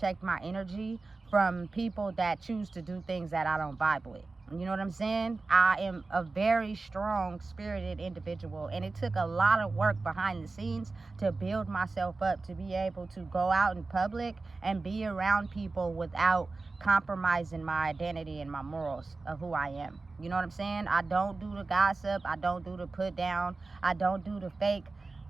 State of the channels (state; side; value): quieter; left; 3.7 dB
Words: my energy from people that choose to do things that I don't vibe with. You know what I'm saying? I am a very strong spirited individual, and it took a lot of work behind the scenes to build myself up to be able to go out in public and be around people without compromising my identity and my morals of who I am. You know what I'm saying? I don't do the gossip. I don't do the put down. I don't do the fake